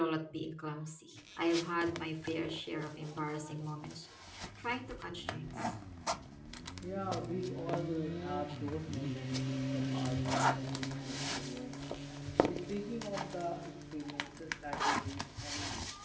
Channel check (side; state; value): both; identical; correlation 1.00